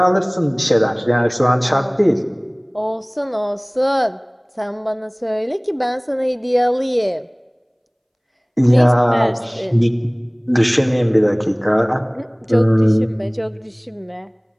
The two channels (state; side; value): identical; both; correlation 1.00